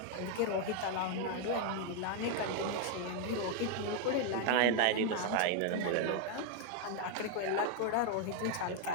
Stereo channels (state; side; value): different; both; correlation 0.01